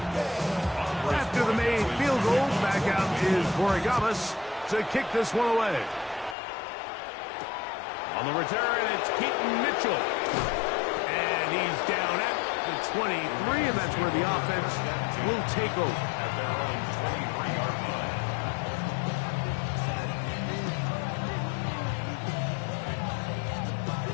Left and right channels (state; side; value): drops out; right; at 6.4 s